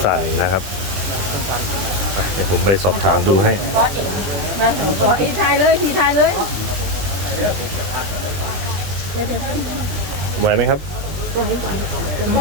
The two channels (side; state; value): left; late; 20 ms